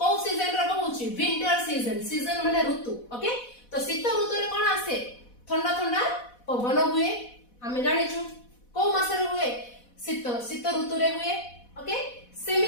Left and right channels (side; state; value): right; late; 4.1 ms